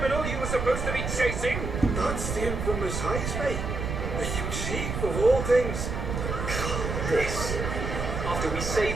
you were supposed to be chasing? That's the infamous Heismay. The huge chief of all things. This, after we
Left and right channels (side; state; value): right; noise; rumble, 3 dB below the sound